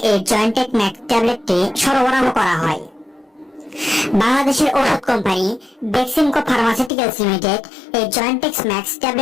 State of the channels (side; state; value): right; drops out; at 6.9 s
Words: এই জয়েন্টেক ম্যাক্স ট্যাবলেটটি সরবরাহ করা হয়। বাংলাদেশের ওষুধ কোম্পানি বেক্সিমকো ফার্মাসিউটিক্যালস লিমিটেড এই জয়েন্টেক্স ম্যাক্স